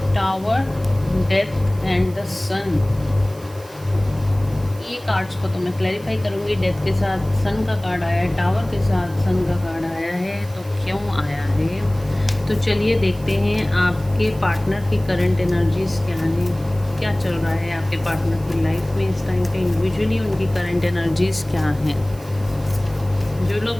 टावर, डेथ एंड द सन। ये कार्ड्स को तो मैं क्लैरिफाई करूँगी। डेथ के साथ सन का कार्ड आया है, टावर के साथ सन का कार्ड आया है, तो क्यों आया है। तो चलिए देखते हैं आपके पार्टनर की करंट एनर्जीज क्या हैं, क्या चल रहा है आपके पार्टनर की लाइफ में इस टाइम पे। इंडिविजुअली उनकी करंट एनर्जीज क्या हैं। जो लोग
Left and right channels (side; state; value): right; noise; hiss, 23 dB below the sound